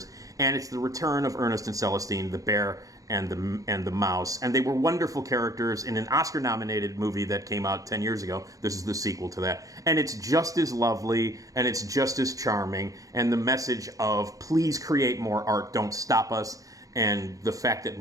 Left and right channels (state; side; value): late; left; 0.17 ms